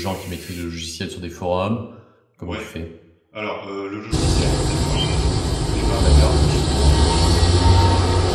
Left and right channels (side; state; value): both; identical; correlation 1.00